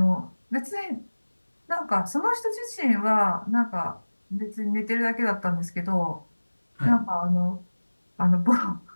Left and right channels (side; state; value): both; inverted; correlation -1.00